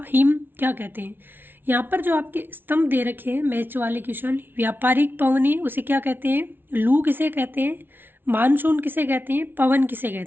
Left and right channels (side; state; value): left; late; 0.10 ms